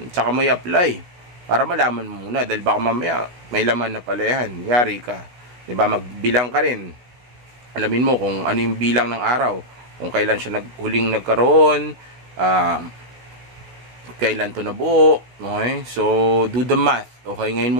tsaka mo i-apply para malaman mo muna, dahil baka mamaya may laman na pala yan, yari ka, diba? Magbilang ka rin, alamin mo kung ano yung bilang ng araw, kung kailan siya huling nagkaroon, kailan to nabuo, okay? So do the math, okay? Ngayon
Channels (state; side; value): late; left; 16 ms